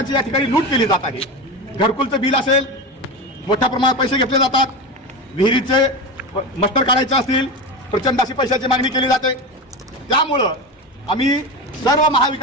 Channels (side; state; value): both; normal; correlation 0.22